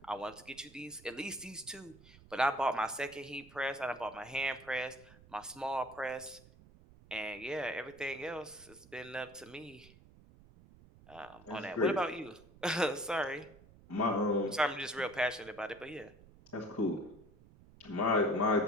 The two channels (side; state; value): right; noise; rumble, 22 dB below the sound